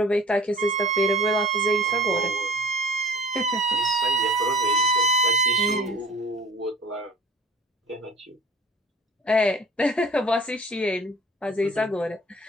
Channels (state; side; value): normal; both; correlation 0.46